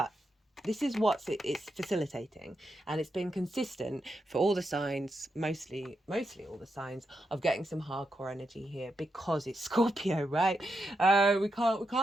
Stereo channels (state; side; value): normal; both; correlation 0.85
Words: This is what it's facilitating, and it's been consistent for all the signs, mostly all the signs of getting some hardcore energy here because it's Scorpio, right? We